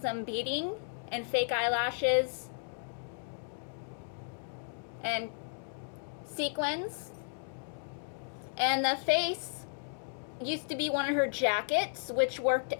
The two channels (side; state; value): right; silent; digital silence